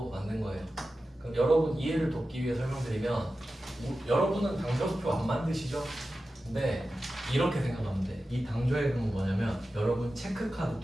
만든 거예요. 그럼 여러분 이해를 돕기 위해 설명드리면 여러분은 당좌수표 안 만드시죠? 근데 이렇게 생각하면 돼. 이 당좌예금은 뭐냐면 여러분 체크카드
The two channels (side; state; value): both; normal; correlation 0.93